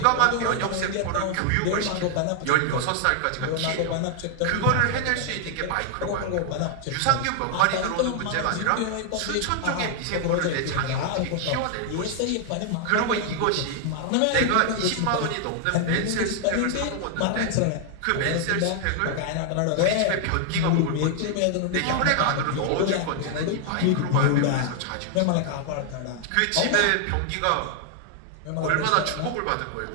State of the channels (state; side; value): different; both; correlation 0.00